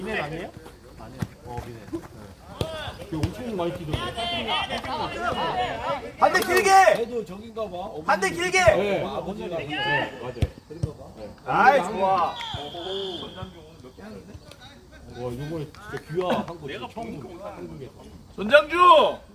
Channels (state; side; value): identical; both; correlation 1.00